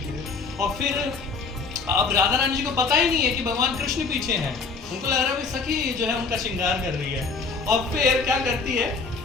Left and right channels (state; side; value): quieter; right; 4.7 dB